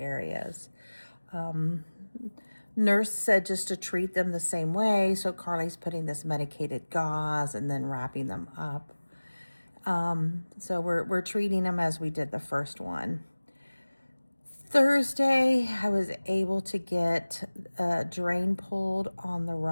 Nurse said just to treat them the same way. So Carly's putting this medicated gauze and then wrapping them up. So we're treating them as we did the first one. Thursday, I was able to get a drain pulled on the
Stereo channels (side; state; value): both; inverted; correlation -1.00